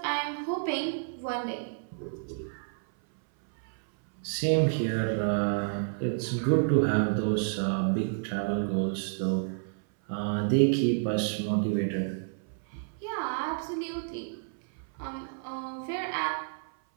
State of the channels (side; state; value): left; silent; 58 dB below the other